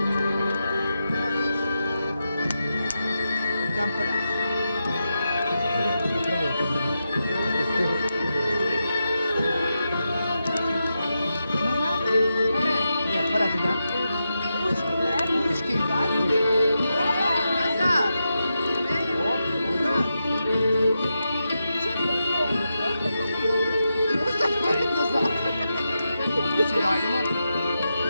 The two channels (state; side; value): inverted; both; correlation -0.88